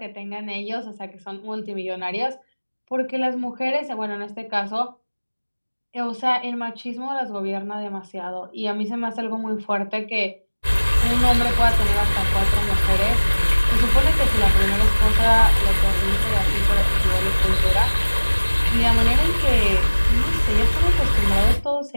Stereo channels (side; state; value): both; inverted; correlation -1.00